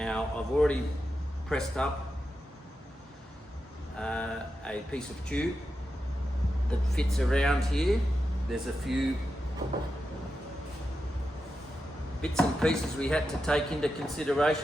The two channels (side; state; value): both; normal; correlation 0.89